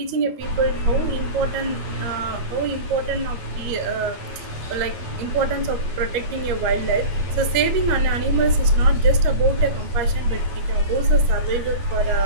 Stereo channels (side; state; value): left; late; 13 ms